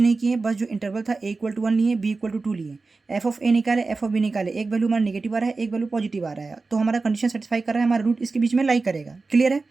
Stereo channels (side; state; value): left; quieter; 3.9 dB